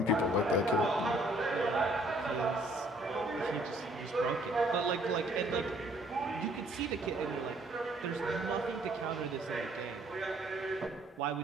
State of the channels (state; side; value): normal; both; correlation 0.62